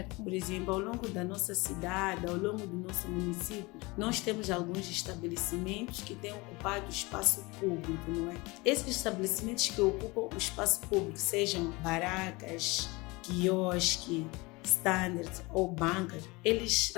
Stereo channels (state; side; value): quieter; right; 24.4 dB